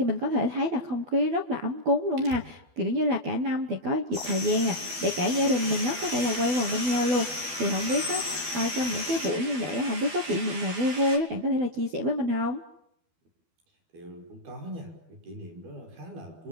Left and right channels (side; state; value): left; late; 12 ms